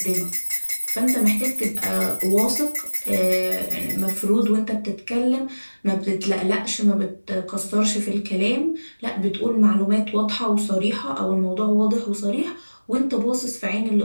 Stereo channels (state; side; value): inverted; both; correlation -1.00